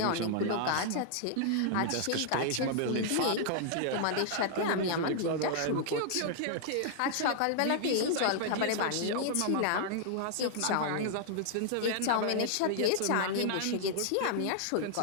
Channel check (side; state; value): both; different; correlation -0.01